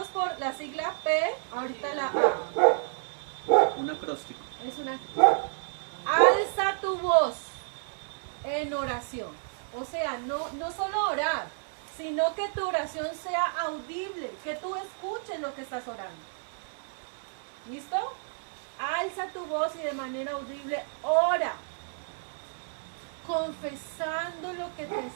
por la sigla P, ahorita la A. Un acróstico. Es una. Alza tu voz en oración. O sea, no solo orar, sino que tu oración sea audible, que tú escuches lo que estás orando. ¿Listo? Alza tu voz y de manera audible ora, confesando lo que te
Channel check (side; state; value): left; silent; 55 dB below the other